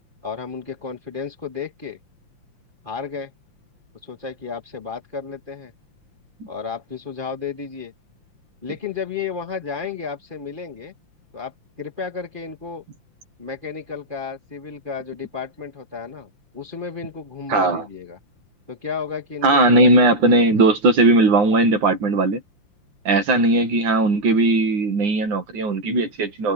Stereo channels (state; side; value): late; left; 5.8 ms